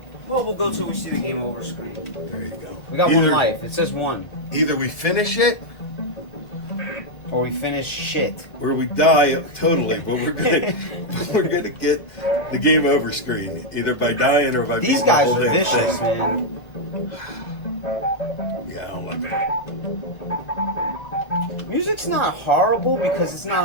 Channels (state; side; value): late; right; 2.0 ms